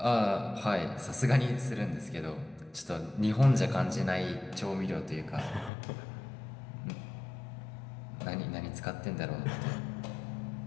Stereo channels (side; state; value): right; drops out; at 5.7 s